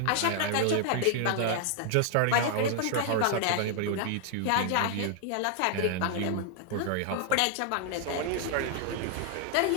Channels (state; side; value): different; both; correlation 0.00